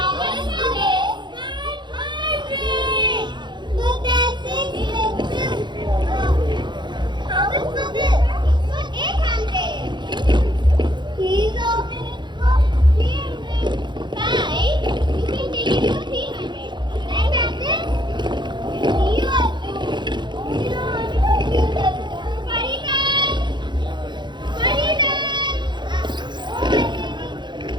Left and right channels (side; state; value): left; late; 0.22 ms